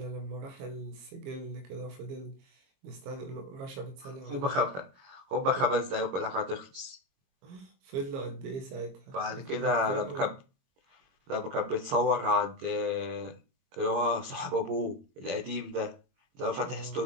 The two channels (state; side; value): late; left; 22 ms